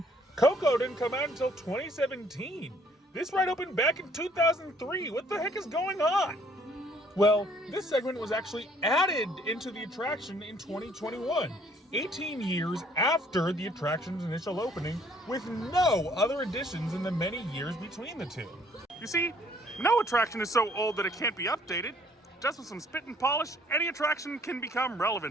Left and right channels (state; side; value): normal; both; correlation 0.61